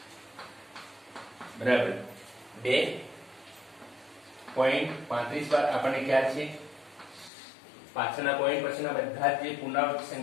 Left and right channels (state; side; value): drops out; right; at 7.3 s